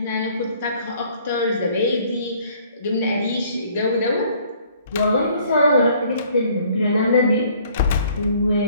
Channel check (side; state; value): both; inverted; correlation -0.59